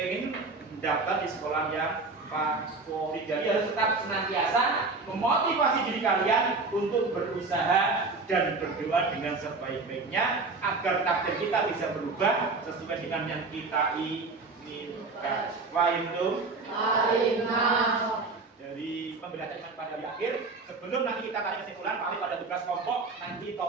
mendaftar di sekolah yang favorit. Jadi harus tetap senantiasa memotivasi diri kalian untuk berusaha dan berdoa dengan sebaik-baiknya agar takdir kita bisa berubah sesuai dengan yang kita inginkan. Fahim tuh? Dari pembelajaran pada di akhir, sebelum nanti kita tarik kesimpulan, Pak pada tugas kelompok nanti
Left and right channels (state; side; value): quieter; left; 3.8 dB